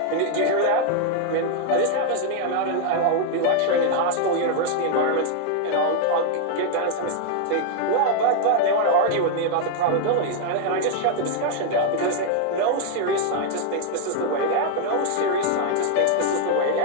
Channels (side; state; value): both; different; correlation 0.00